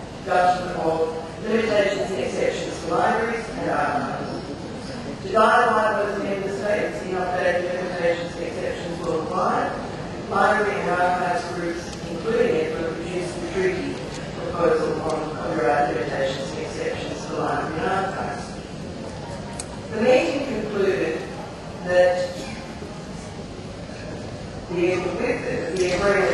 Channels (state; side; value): identical; both; correlation 1.00